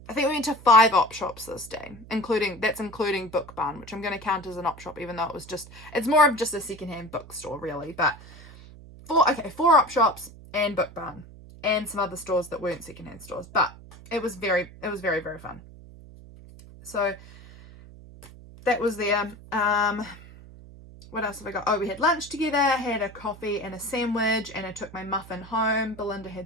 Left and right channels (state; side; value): noise; right; hum, 19 dB below the sound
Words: we went to 5 op shops this day, including Book Barn, which I'm going to count as an op shop, even though it's more of just a secondhand bookstore really. But 4 op shops and Book Barn and some other stores that weren't secondhand stores, but it was very, very fun. So that was there. What else have I got? Oh, we had lunch together, had a coffee and a sandwich, and I took my muffin home. Belinda